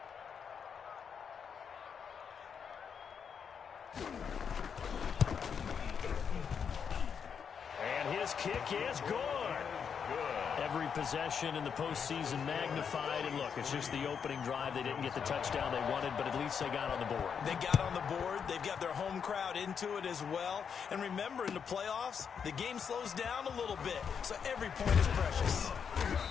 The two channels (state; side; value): quieter; right; 6.9 dB